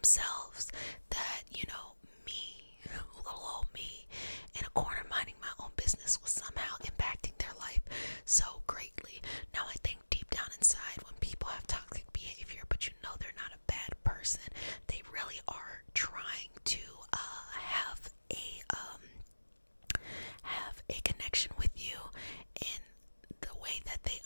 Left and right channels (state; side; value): inverted; both; correlation -1.00